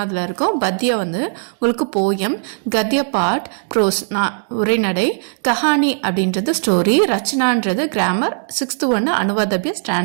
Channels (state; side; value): silent; left; 67 dB below the other